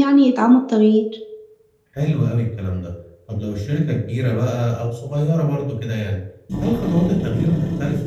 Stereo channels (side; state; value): both; identical; correlation 1.00